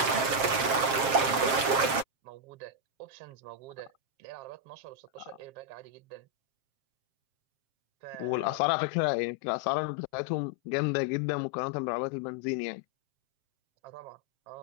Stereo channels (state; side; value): late; left; 7.5 ms